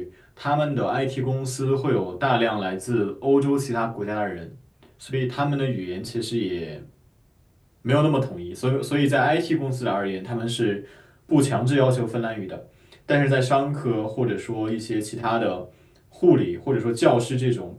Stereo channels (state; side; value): identical; both; correlation 1.00